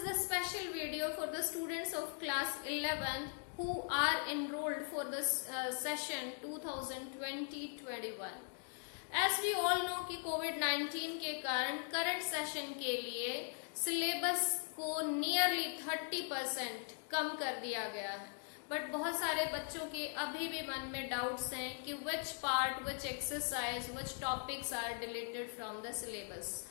the special video for the students of class 11th who are enrolled for this session 2020-21. As we all know कि कोविड-19 के कारण current session के लिए syllabus को nearly 30% कम कर दिया गया है, बट बहुत सारे बच्चों के अभी भी मन में डाउट्स हैं कि which part, which exercise, which topics are deleted from the syllabus.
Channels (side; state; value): right; silent; 51 dB below the other